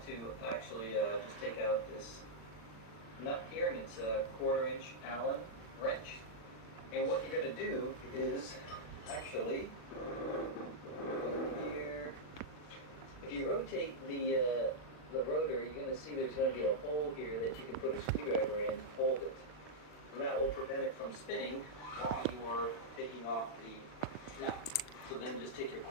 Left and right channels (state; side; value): late; right; 39 ms